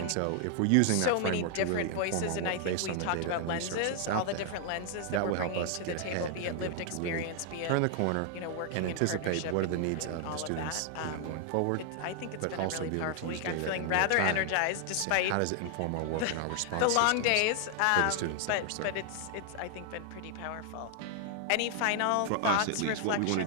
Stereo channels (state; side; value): different; both; correlation 0.00